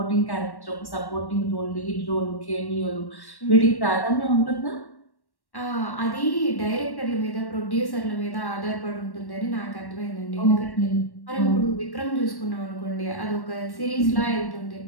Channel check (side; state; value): right; late; 1.1 ms